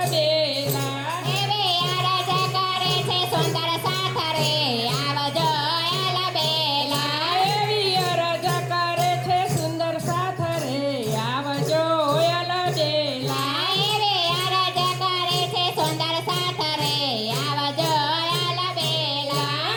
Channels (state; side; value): identical; both; correlation 1.00